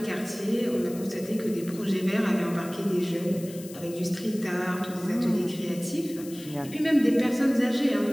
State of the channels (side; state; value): left; noise; hiss, 17 dB below the sound